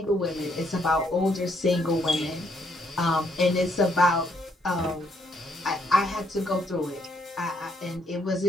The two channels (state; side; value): normal; both; correlation 0.72